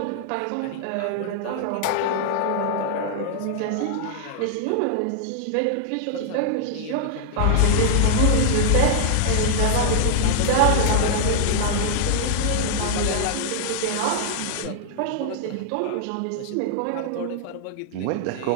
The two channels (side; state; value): both; different; correlation -0.01